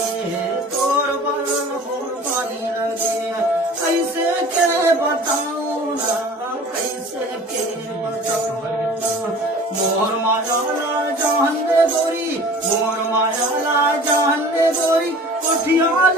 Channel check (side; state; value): both; normal; correlation 0.44